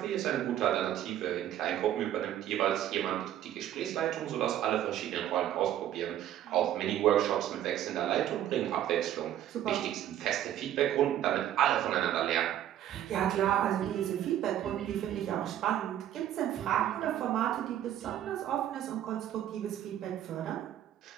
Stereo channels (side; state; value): left; quieter; 11.6 dB